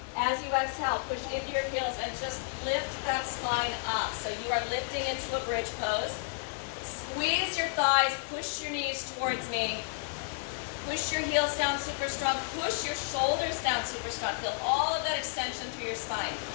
As you exhale, push into your heels and just lift that spine up. So you are lifting into a bridge pose. Squeeze your thighs, push your knees towards me. Push your heels down super strong. Push your shoulders down super strong. Feel all of that extension through your spine.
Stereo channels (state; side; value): silent; right; digital silence